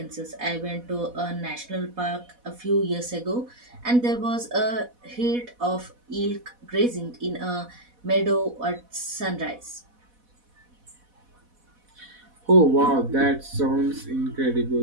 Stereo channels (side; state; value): left; late; 4.1 ms